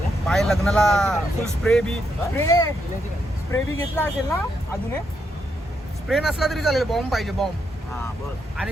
पाय लग्नाला फुल स्प्रे बी घेतला असेल ना. अजून स्प्रे नसला तरी चालेल, बॉम्ब पाहिजे, बॉम्ब.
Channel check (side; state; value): both; normal; correlation 0.79